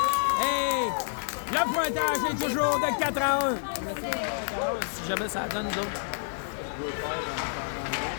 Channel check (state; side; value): silent; right; digital silence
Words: Et le pointage est toujours de 4-1. Si jamais ça donne, nous autres.